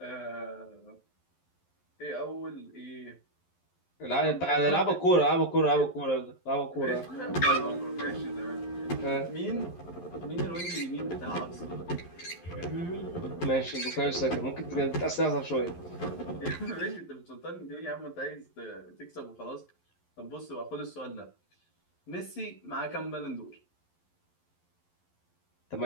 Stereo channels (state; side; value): late; right; 11 ms